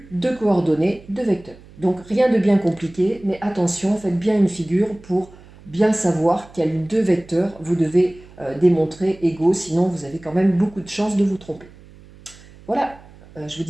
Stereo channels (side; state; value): right; noise; hum, 22 dB below the sound